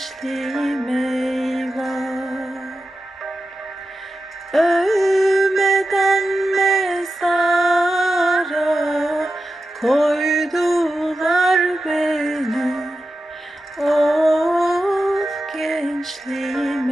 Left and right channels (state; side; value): normal; both; correlation 0.91